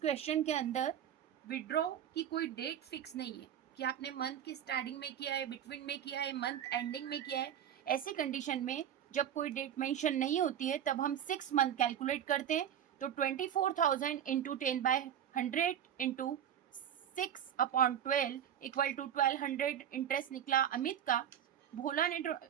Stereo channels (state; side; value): quieter; left; 9.8 dB